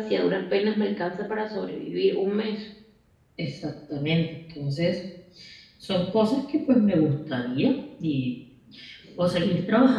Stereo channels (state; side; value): identical; both; correlation 1.00